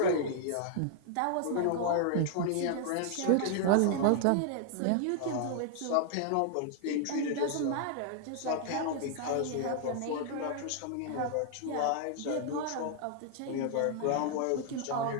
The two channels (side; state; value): both; different; correlation 0.00